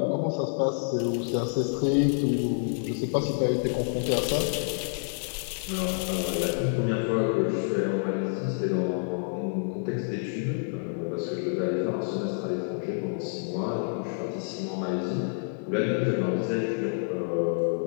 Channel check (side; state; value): right; silent; 55 dB below the other